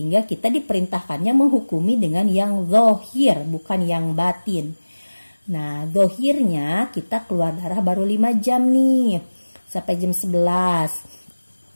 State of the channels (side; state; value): both; inverted; correlation -1.00